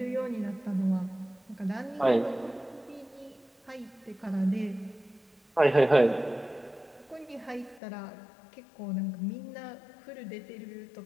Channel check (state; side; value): drops out; right; at 7.8 s